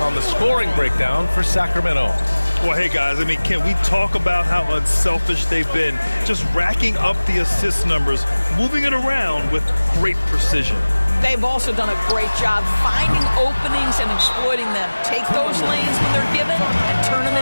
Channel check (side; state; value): both; inverted; correlation -1.00